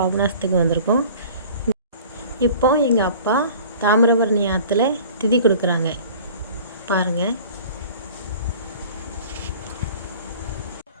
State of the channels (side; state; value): both; inverted; correlation -0.45